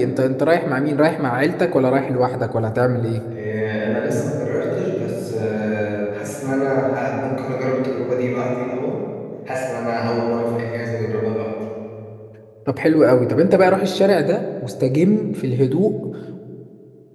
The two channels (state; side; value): identical; both; correlation 1.00